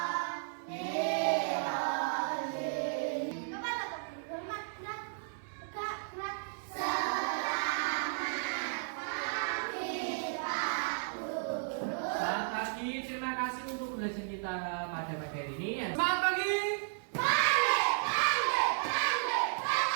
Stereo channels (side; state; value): left; silent; digital silence